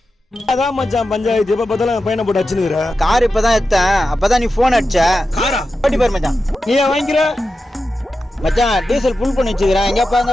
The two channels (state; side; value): normal; both; correlation 0.91